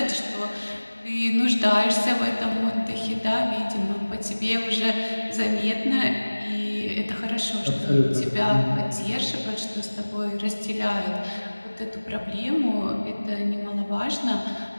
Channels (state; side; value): inverted; both; correlation -1.00